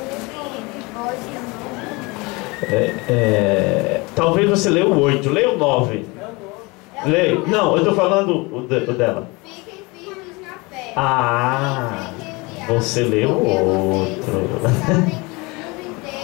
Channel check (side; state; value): right; quieter; 25.7 dB